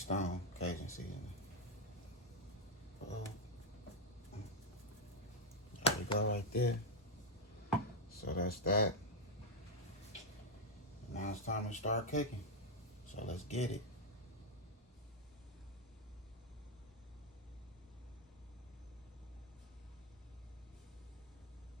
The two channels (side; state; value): both; normal; correlation 0.02